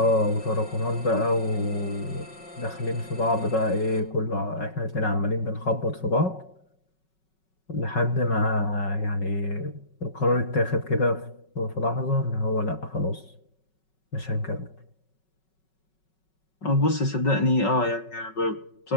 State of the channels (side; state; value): right; late; 5.4 ms